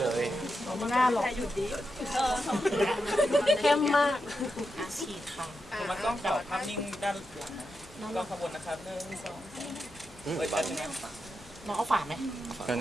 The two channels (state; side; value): normal; both; correlation 0.87